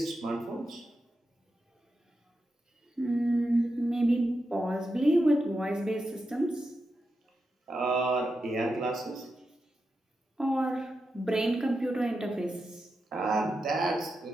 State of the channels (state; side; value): normal; both; correlation 0.88